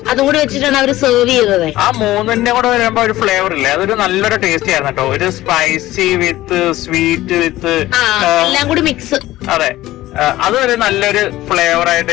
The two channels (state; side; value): quieter; right; 16.1 dB